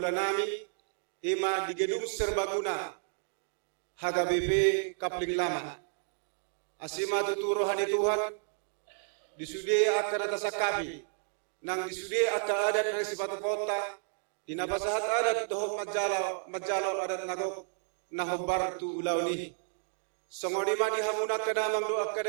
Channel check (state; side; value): silent; left; digital silence